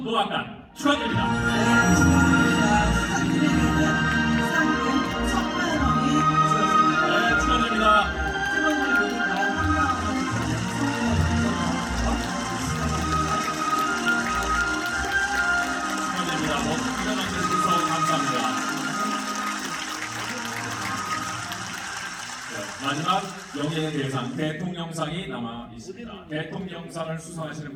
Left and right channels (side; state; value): both; identical; correlation 1.00